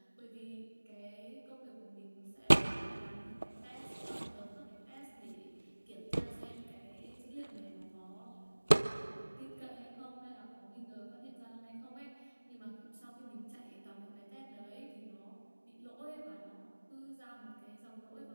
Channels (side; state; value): both; inverted; correlation -1.00